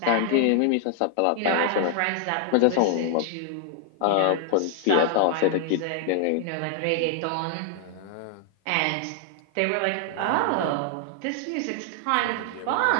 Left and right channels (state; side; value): different; both; correlation 0.00